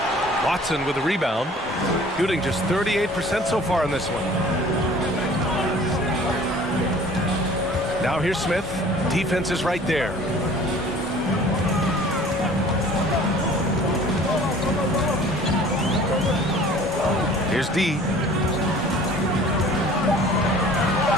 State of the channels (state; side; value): normal; both; correlation 0.49